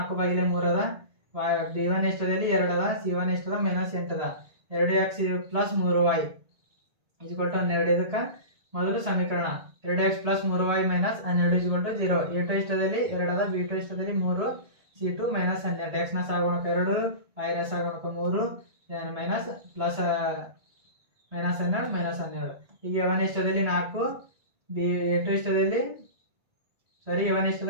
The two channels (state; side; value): late; left; 1.9 ms